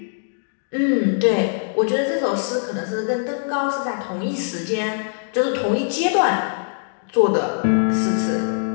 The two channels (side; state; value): right; silent; digital silence